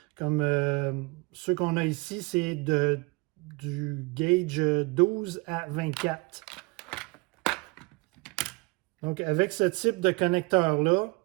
Comme ceux qu'on a ici, c'est du gauge 12 à 24. Donc, avec ce type de connecteur-là,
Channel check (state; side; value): quieter; left; 27.2 dB